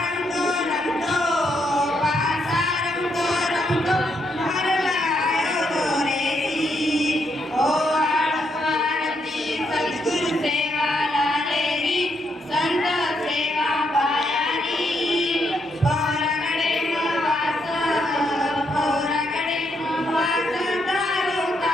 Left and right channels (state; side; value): normal; both; correlation 0.77